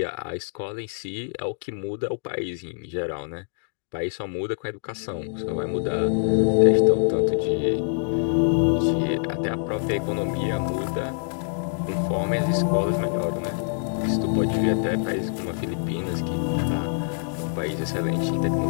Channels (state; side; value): silent; right; digital silence